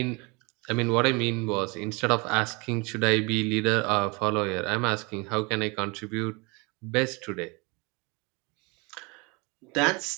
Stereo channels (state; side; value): quieter; left; 28.5 dB